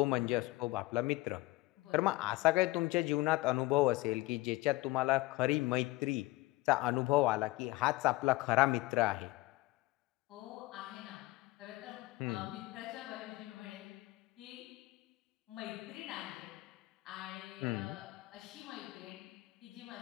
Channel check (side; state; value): right; quieter; 20.0 dB